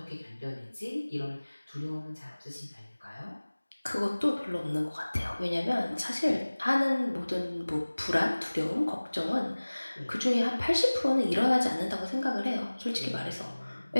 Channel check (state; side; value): inverted; both; correlation -1.00